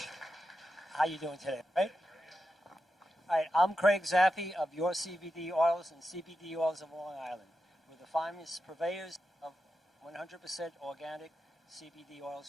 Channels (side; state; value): both; normal; correlation 0.89